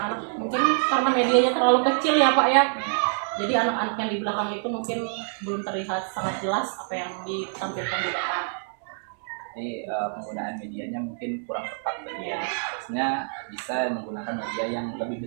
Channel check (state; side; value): silent; left; digital silence